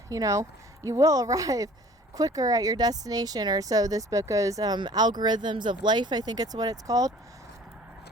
you will arrive quicker at your destination, or so this book goes, Algorithms of Life, I think it's what it's called,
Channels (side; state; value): both; normal; correlation 0.50